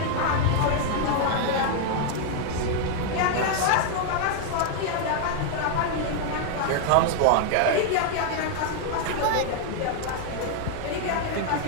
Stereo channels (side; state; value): both; different; correlation 0.00